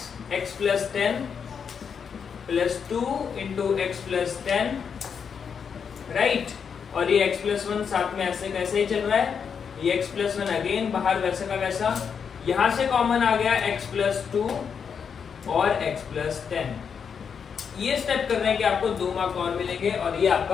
plus 10 plus 2 into x plus 10, right. और ये x प्लस 1 साथ में ऐसे कैसे ही चल रहा है, ये x प्लस 1 अगेन बाहर वैसे का वैसा, यहां से कॉमन आ गया x प्लस 2 और x प्लस 10। ये स्टेप कर रहे हैं कि आपको 2 मार्क और मिलेंगे और ये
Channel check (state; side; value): quieter; right; 6.7 dB